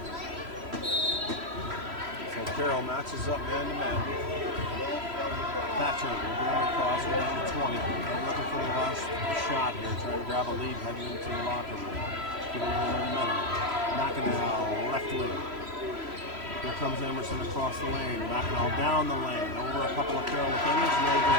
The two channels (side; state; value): left; late; 3.0 ms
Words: Carroll matches up man-to-man. Thatcher will bring it across. We're down to 20. We're looking for the last shot here, trying to grab a lead heading into the locker room. Get a little momentum. Mackinac left wing. Here comes Emerson across the lane. Mackinac down the lane. Over a couple of Carroll defenders. No